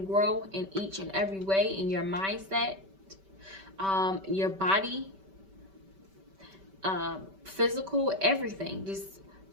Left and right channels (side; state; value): left; late; 5.2 ms